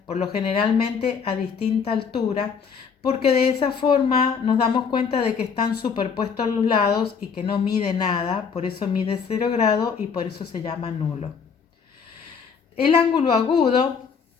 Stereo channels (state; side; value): quieter; right; 6.2 dB